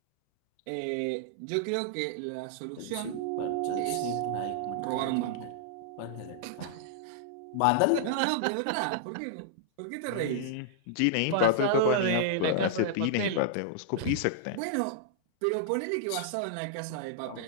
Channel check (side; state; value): both; different; correlation -0.01